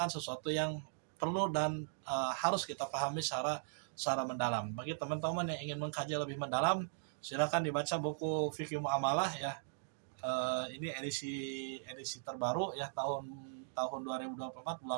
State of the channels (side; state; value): left; silent; digital silence